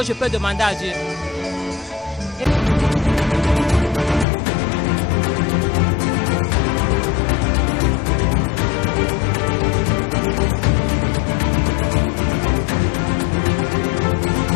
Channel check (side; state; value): right; drops out; at 4.2 s